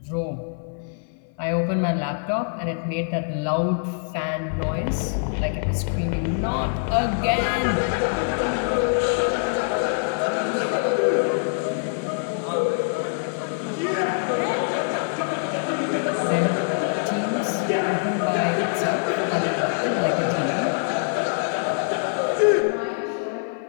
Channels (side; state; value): right; silent; 55 dB below the other